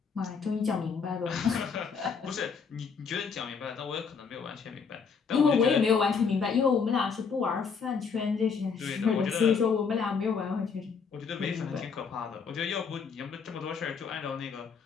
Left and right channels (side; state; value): right; quieter; 5.8 dB